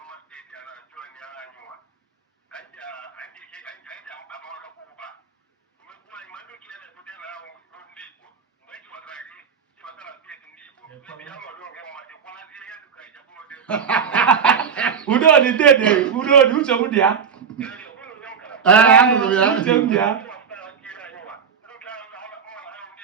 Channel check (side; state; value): left; quieter; 6.8 dB